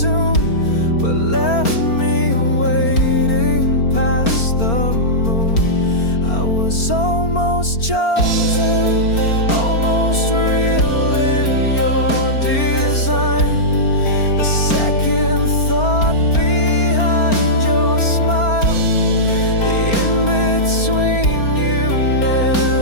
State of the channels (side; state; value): right; late; 4.4 ms